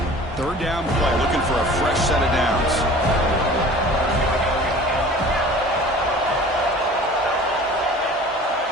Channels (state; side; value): normal; both; correlation 0.44